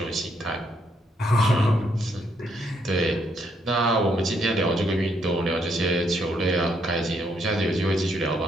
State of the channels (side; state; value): both; normal; correlation 0.74